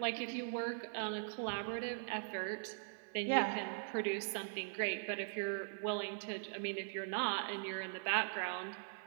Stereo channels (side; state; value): left; silent; 50 dB below the other